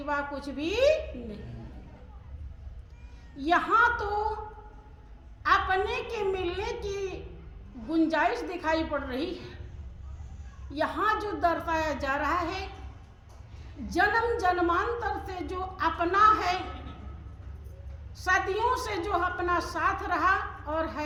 कुछ भी नहीं। यहाँ तो अपने के मिलने की गुंजाइश दिखाई पड़ रही है। यहाँ जो दर्शाया जा रहा है, जन्म जन्मांतर से जो अपना है, सदियों से जो अपना साथ रहा और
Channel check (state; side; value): identical; both; correlation 1.00